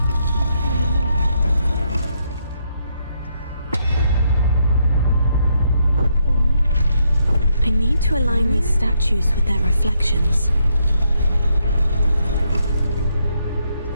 I need to align these statues with their reflections.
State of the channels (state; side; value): inverted; both; correlation -0.76